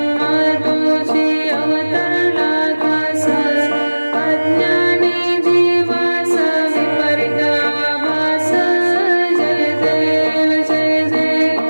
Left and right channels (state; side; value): inverted; both; correlation -1.00